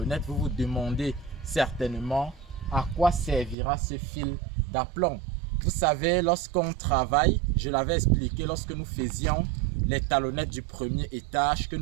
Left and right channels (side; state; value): left; drops out; at 3.6 s